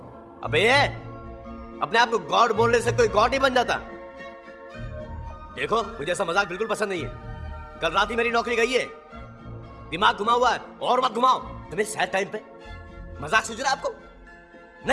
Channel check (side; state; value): both; identical; correlation 1.00